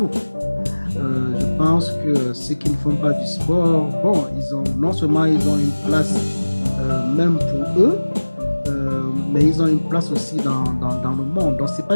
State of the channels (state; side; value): inverted; both; correlation -1.00